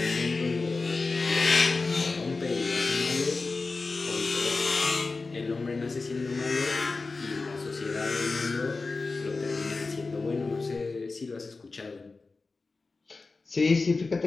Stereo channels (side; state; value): right; quieter; 3.9 dB